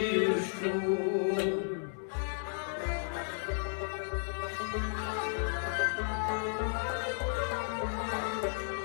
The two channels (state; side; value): silent; right; digital silence